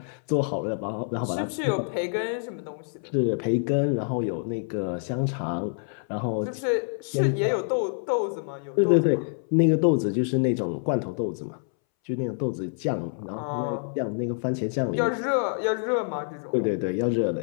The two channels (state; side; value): silent; right; 60 dB below the other